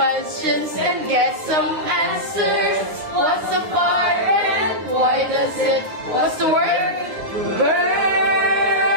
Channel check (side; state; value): left; late; 9.7 ms